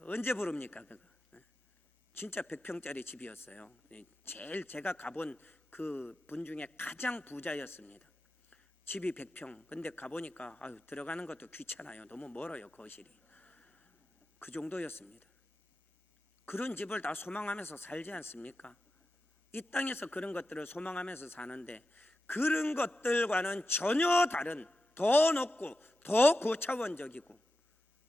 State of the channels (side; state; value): both; normal; correlation 0.91